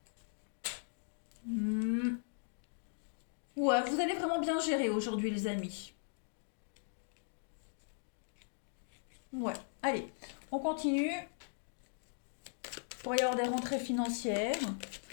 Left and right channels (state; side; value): silent; right; digital silence